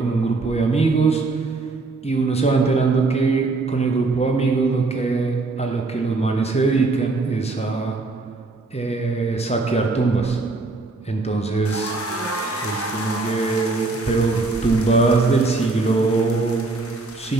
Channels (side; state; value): left; quieter; 3.5 dB